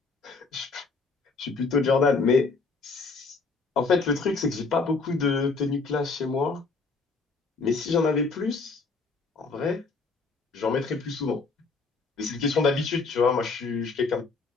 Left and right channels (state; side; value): quieter; right; 4.3 dB